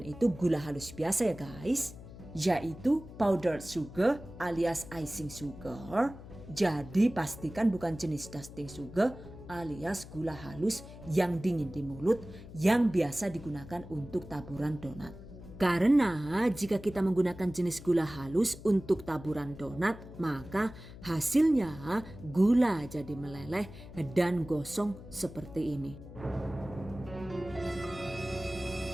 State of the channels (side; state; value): left; noise; hum, 15 dB below the sound